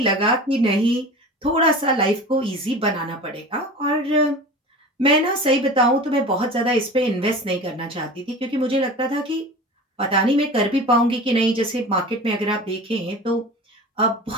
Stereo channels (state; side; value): normal; both; correlation 0.35